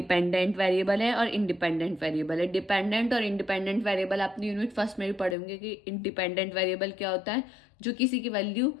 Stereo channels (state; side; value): drops out; right; at 5.4 s